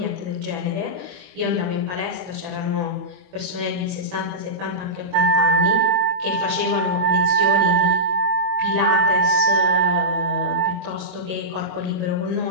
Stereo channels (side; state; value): left; late; 22 ms